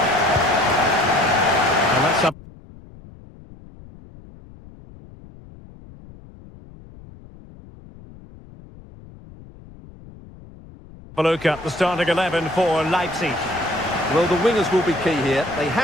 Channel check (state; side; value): noise; left; rumble, 20 dB below the sound